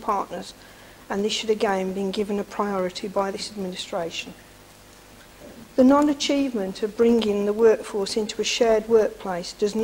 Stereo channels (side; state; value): both; identical; correlation 1.00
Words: partners, and this should again be given a priority by this administration. The non-achievement of bringing the workforce into a shared workplace does